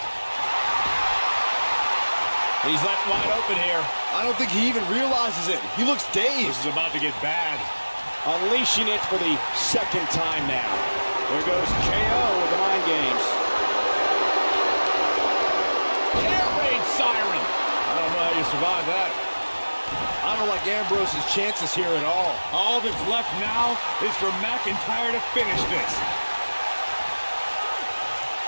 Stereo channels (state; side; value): inverted; both; correlation -1.00